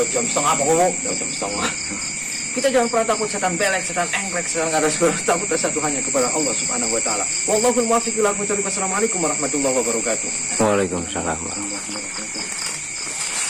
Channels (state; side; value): identical; both; correlation 1.00